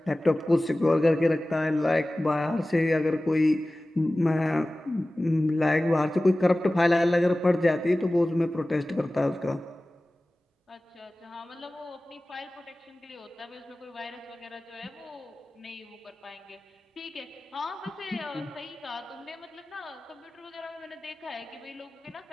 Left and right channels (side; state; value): both; normal; correlation 0.97